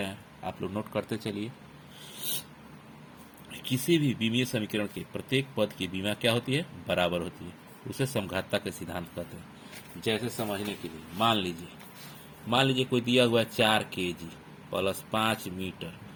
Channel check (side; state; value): both; identical; correlation 1.00